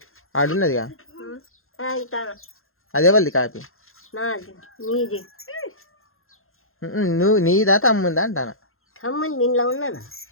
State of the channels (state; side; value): late; right; 0.61 ms